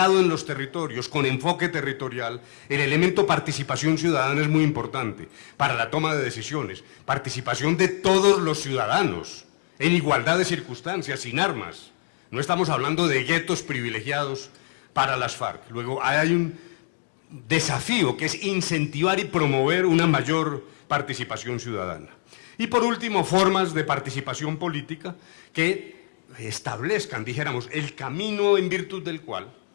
en los territorios, con enfoque territorial. El elemento participación ciudadana es muy importante para la toma de decisiones, participación de todos los ciudadanos, en igualdad de circunstancias, sin armas. No estamos hablando de guetos privilegiados para las FARC. Luego hay un desafío que es incentivar y promover una mayor participación ciudadana. Y por último, formas de participación política que establezcan, dijéramos, el camino en virtud del cual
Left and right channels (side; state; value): right; silent; 62 dB below the other